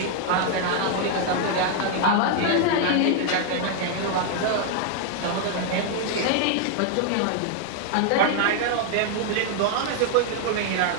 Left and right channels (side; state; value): both; different; correlation 0.00